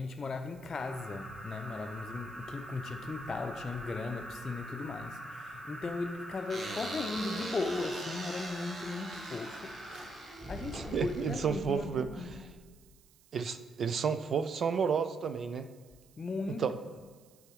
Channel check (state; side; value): noise; right; hiss, 28 dB below the sound